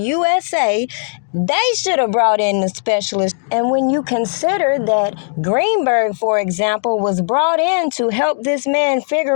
they should have brought in the specialists. And when you consider that Greenberg, for example, was brought in to help this man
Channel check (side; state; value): right; silent; digital silence